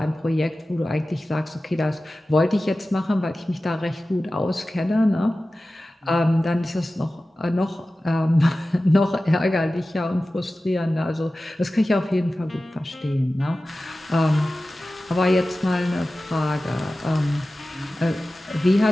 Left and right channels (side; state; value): both; normal; correlation 0.95